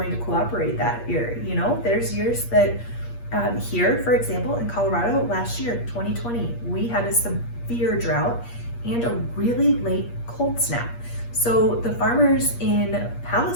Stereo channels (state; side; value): late; right; 8.5 ms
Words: to cooperate that year. You know, there's years that here, for example, in Colorado last year, 2020, we had a severe drought and a really late cold snap. So the farmers in